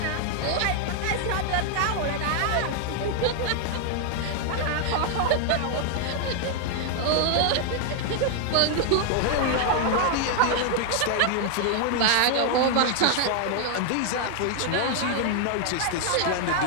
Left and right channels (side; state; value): both; different; correlation 0.00